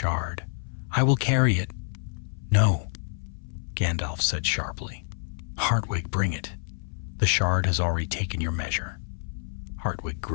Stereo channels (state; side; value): silent; right; 60 dB below the other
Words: "I will carry it." "No," Gandalf said sharply. "Hartwig, bring it. The shard has already taken your measure." Hartwig